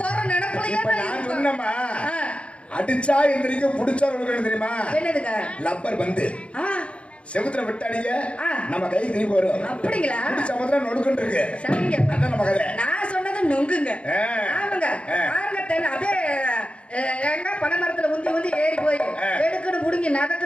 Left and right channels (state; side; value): late; right; 0.060 ms